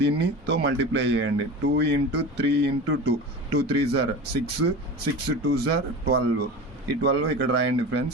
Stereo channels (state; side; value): normal; both; correlation 0.31